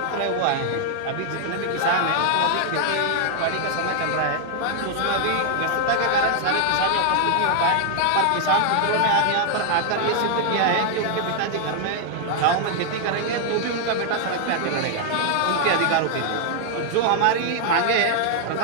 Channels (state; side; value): different; both; correlation 0.00